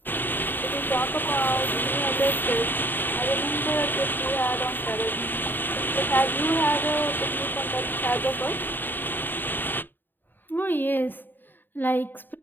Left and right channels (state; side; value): late; right; 0.092 ms